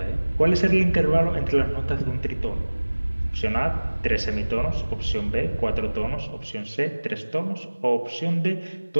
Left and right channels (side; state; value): both; inverted; correlation -1.00